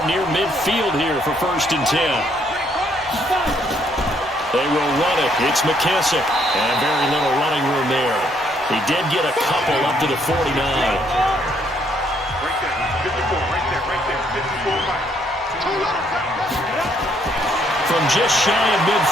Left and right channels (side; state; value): both; normal; correlation 0.69